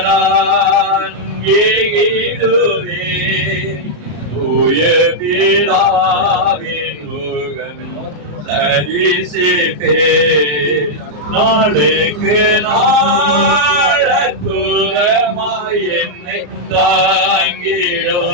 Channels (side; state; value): left; late; 34 ms